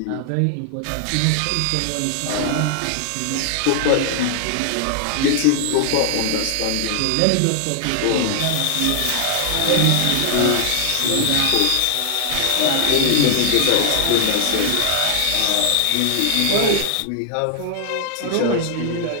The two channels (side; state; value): both; different; correlation 0.00